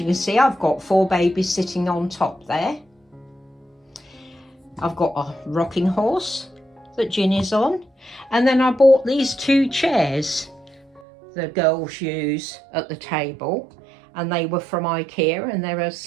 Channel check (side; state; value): left; drops out; at 11.0 s